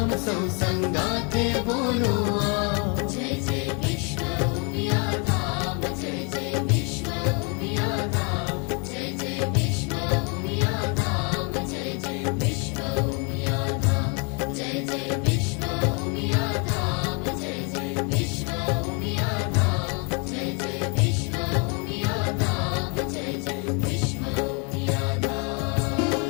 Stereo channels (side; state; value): right; quieter; 34.9 dB